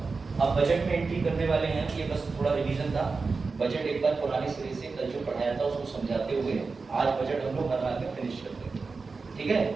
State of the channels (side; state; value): left; quieter; 4.3 dB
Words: अब बजट में एंट्री करने वाले हैं, ये बस थोड़ा रिवीजन था। बजट एक बार पुराने सिरे से कल जो पढ़ाया था उसको समझाते हुए आज बजट हम लोग हर हाल में फिनिश करते हैं। ठीक है,